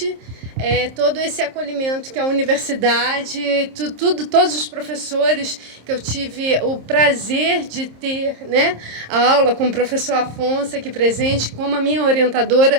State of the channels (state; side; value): late; left; 26 ms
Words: todo esse acolhimento que a universidade, todos os professores que eu tive o prazer de ter, né, a aula com o professor Afonso aqui presente, como a minha